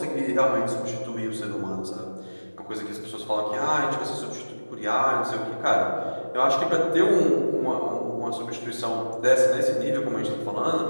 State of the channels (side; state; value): both; inverted; correlation -1.00